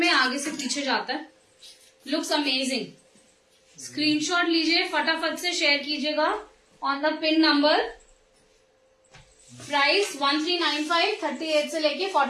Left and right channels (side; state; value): both; identical; correlation 1.00